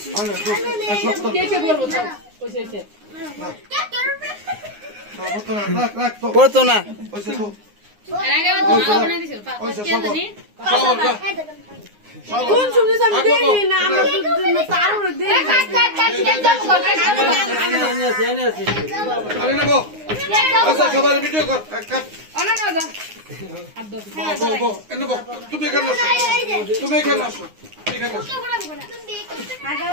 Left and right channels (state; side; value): late; left; 9.7 ms